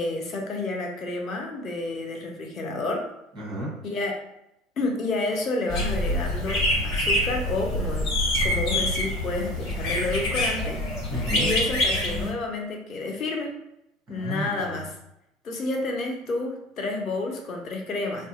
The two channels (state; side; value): normal; both; correlation 0.40